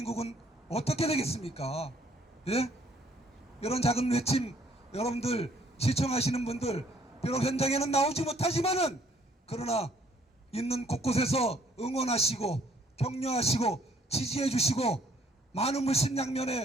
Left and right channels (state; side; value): normal; both; correlation 0.63